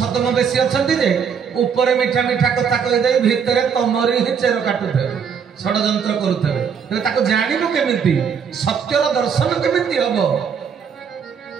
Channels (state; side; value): quieter; left; 6.9 dB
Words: ବେଶୀ ଅଛନ୍ତି ଯେ ଉପରେ ମିଠା ମିଠା କଥା କହିଦେଇ ଭିତରେ ତମରି ହିଁ ଚେର କାଟୁଥିବେ, ଷଡଯନ୍ତ୍ର କରୁଥିବେ। ତେବେ ତାକୁ ଜାଣିବୁ କେମିତି? ସତ୍ୟର ଦର୍ଶନ କେମିତି ହବ?